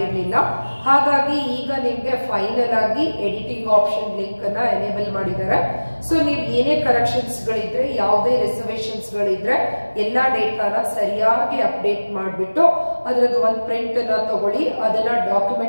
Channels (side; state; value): both; inverted; correlation -1.00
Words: ಹಾಗಾಗಿ ಈಗ ನಿಮ್ಗೆ ಫೈನಲ್ ಆಗಿ ಎಡಿಟಿಂಗ್ ಆಪ್ಷನ್ ಲಿಂಕ್ ಅನ್ನ ಎನೇಬಲ್ ಮಾಡಿದ್ದಾರೆ. ಸೊ ನೀವು ಏನೇ ಕರೆಕ್ಷನ್ಸ್ ಗಳಿದ್ರೆ, ಯಾವುದೇ ರಿಸರ್ವೇಶನ್ಸ್ ಗಳಿದ್ರೆ ಎಲ್ಲಾ ಡೇಟಾನ ಸರಿಯಾಗಿ ಅಪ್ಡೇಟ್ ಮಾಡಿಬಿಟ್ಟು ಅದರದ್ದು ಒಂದು ಪ್ರಿಂಟ್ ಅನ್ನ ತಗೊಳ್ಳಿ. ಅದನ್ನ